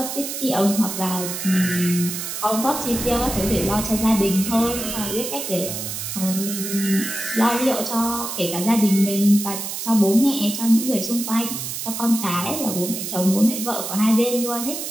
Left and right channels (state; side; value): noise; right; hiss, 5 dB below the sound